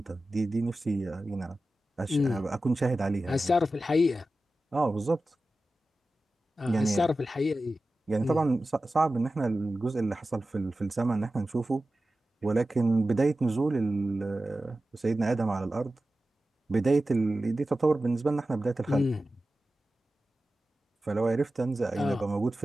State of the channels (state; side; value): normal; both; correlation 0.94